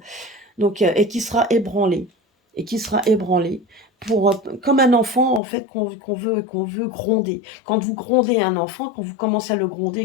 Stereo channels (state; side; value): drops out; right; at 5.4 s